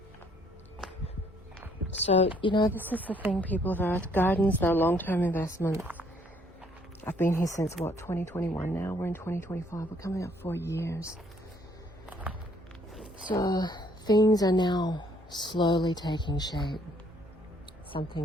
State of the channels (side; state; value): both; normal; correlation 0.65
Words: So, this is the thing, people of Earth. Gardens, they're long-term investments. I've been here since, 2021 now? We're in 2025. We're coming up 4 years. So, things are now slowly taking shape. Some